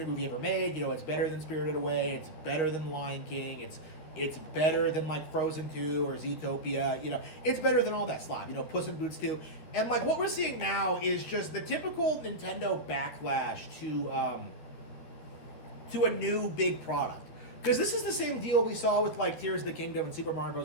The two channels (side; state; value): right; late; 13 ms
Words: movie ever made. You know, it's better than Spirited Away. It's better than Lion King. It's better than like Frozen 2 or Zootopia. You know, it's better than all that slop. You know, Puss in Boots 2. And like what we're seeing now is just the typical Nintendo backlash to a new big product. Because this is the same deal we saw with like Tears of the Kingdom and Super Mario